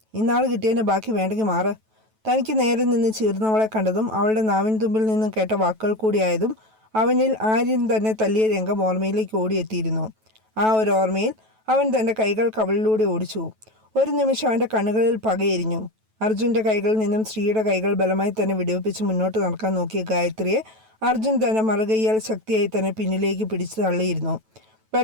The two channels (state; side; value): late; left; 9.2 ms